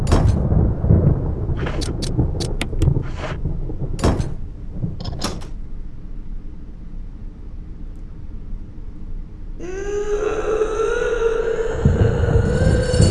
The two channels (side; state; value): both; identical; correlation 1.00